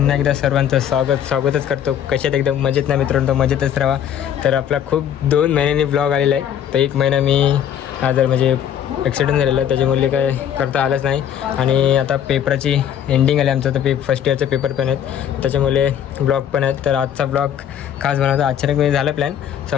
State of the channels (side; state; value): right; quieter; 9.5 dB